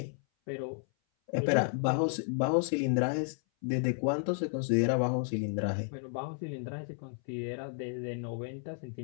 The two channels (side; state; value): right; silent; 56 dB below the other